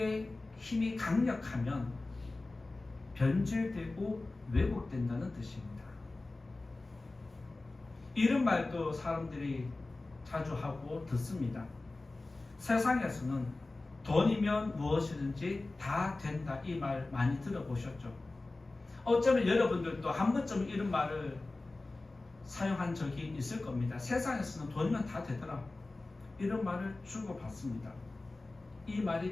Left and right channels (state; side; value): quieter; right; 3.2 dB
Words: 힘이 강력하면 변질되고 왜곡된다는 뜻입니다. 이런 말도 사람들이 자주 하고 듣습니다. 세상에서는 돈이면 무엇이든지 다 된다, 이 말 많이 들어보셨죠? 어쩌면 여러분들도 한 번쯤 이런 말을 사용한 적이 있을 겁니다. 세상에서는 돈이면 다 되더라, 이런 말을 주고받습니다. 이 말이